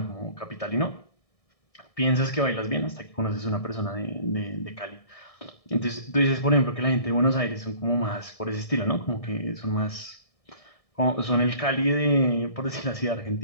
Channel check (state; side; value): late; right; 1.6 ms